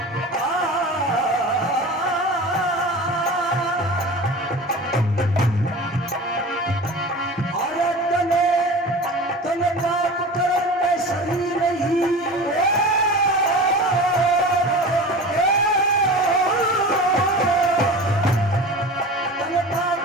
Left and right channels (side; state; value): both; normal; correlation 0.34